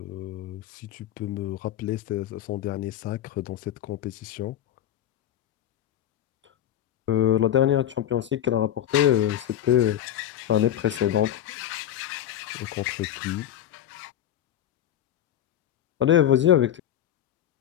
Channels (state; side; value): quieter; right; 11.2 dB